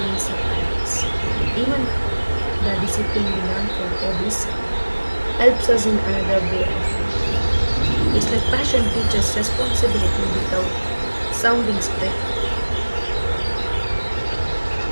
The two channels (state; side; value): inverted; both; correlation -1.00